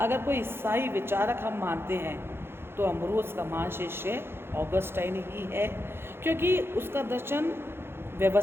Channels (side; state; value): left; late; 0.11 ms